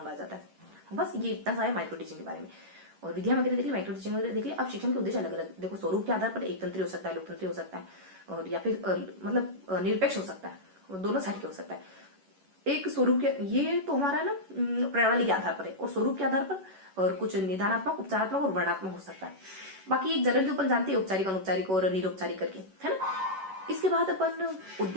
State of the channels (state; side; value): late; left; 11 ms